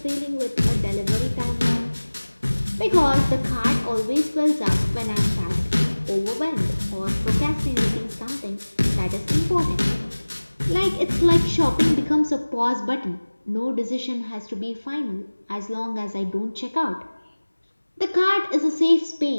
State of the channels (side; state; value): both; inverted; correlation -1.00